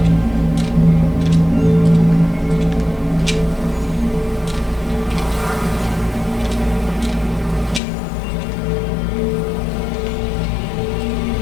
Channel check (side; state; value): right; drops out; at 7.8 s